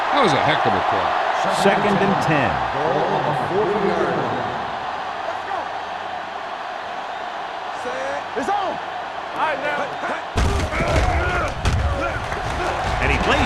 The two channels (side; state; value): both; identical; correlation 1.00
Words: That was a heck of a play. Second and 10. Ball on the 40-yard line. It's on. All right, now. And he